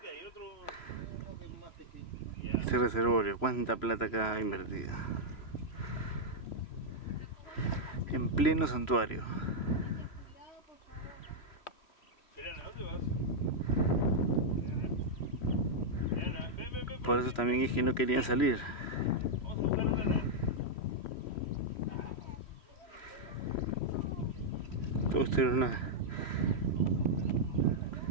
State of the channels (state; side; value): late; right; 3.0 ms